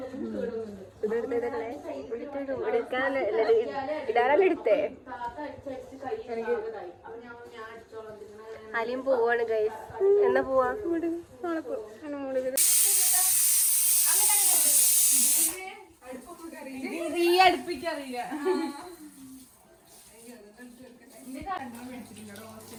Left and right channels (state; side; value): identical; both; correlation 1.00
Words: ഇടാറല്ലേ അലിയും പോവാണ് ഗൈസ്. എന്നാ പോവാ? അടുപ്പിക്കറിയില്ല.